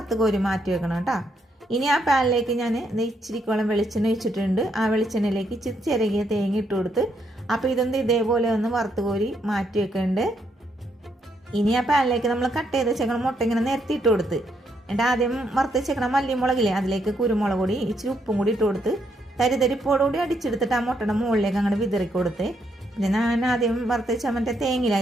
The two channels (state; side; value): normal; both; correlation 0.75